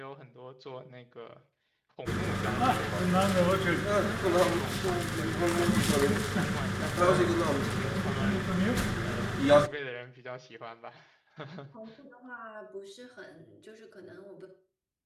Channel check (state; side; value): identical; both; correlation 1.00